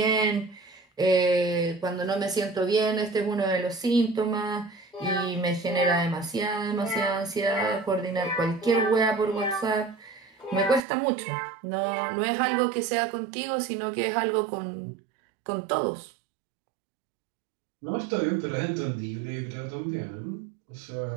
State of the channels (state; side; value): drops out; left; at 10.8 s